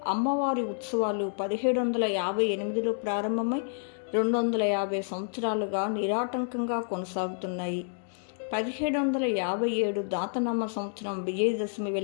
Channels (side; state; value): right; silent; digital silence